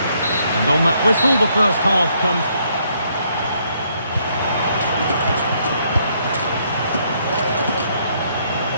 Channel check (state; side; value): inverted; both; correlation -0.70